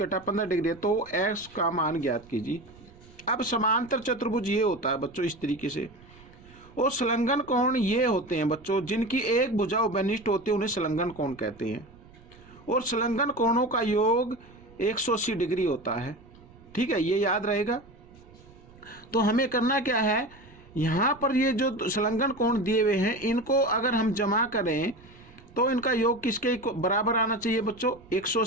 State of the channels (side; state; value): right; noise; rumble, 24 dB below the sound